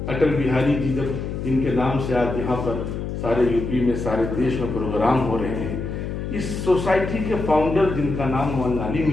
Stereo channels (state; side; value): noise; left; hum, 5 dB below the sound